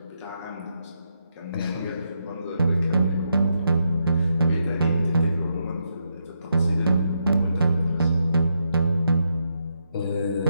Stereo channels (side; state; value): both; inverted; correlation -0.82